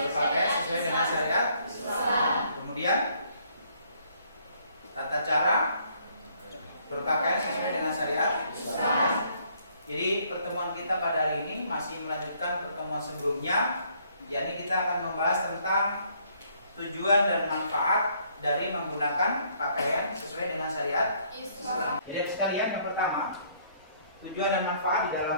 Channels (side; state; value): both; inverted; correlation -0.65